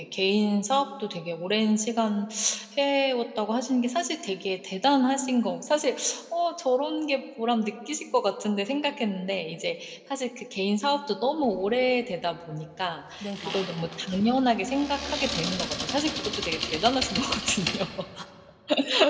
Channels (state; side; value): identical; both; correlation 1.00